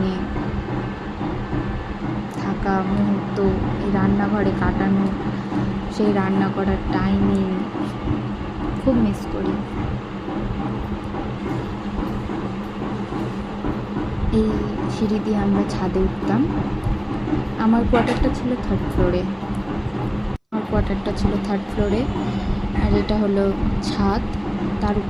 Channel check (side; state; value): both; identical; correlation 1.00